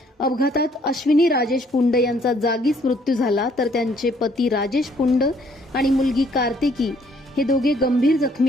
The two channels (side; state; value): both; normal; correlation 0.64